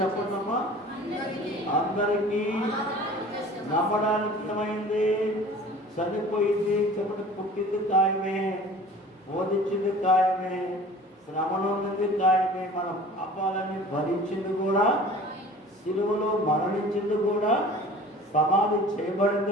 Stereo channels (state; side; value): normal; both; correlation 0.44